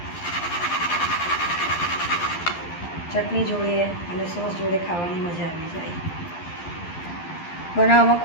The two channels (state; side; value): late; right; 12 ms